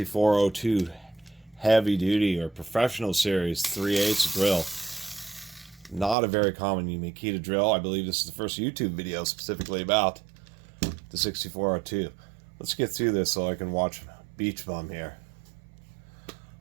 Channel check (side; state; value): left; drops out; at 6.2 s